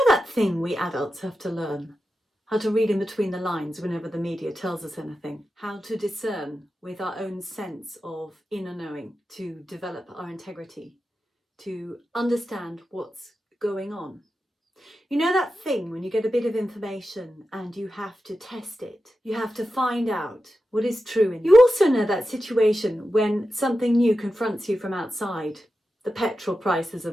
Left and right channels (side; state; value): both; normal; correlation 0.91